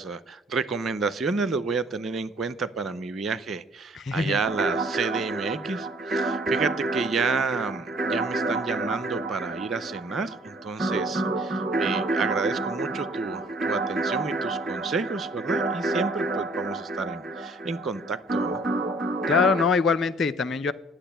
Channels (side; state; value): both; normal; correlation 0.57